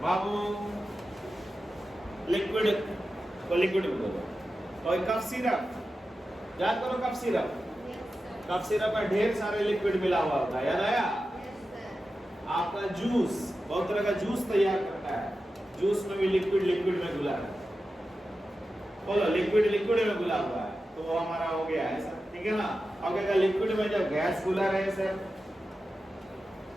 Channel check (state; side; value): normal; both; correlation 0.92